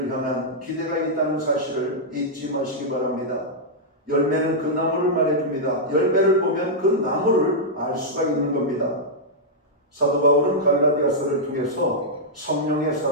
향한 기대가 있다는 사실을 잊지 마시기 바랍니다. 열매는 그 나무를 말해줍니다. 열매를 보면 그 나무를 알 수가 있는 겁니다. 사도 바울은 갈라디아서를 통해서 성령의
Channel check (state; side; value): normal; both; correlation -0.08